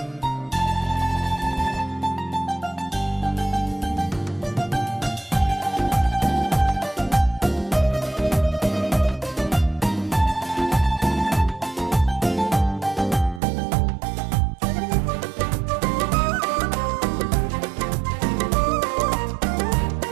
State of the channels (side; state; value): left; drops out; at 13.4 s